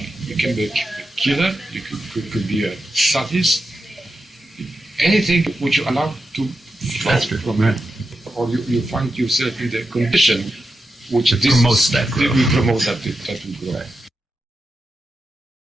You can be a killer, you could be a sadist, anything which you allow to flow from it. Or you find yourself in the condition which promotes that growth. We promote that will grow. Right.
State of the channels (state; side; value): normal; both; correlation 0.89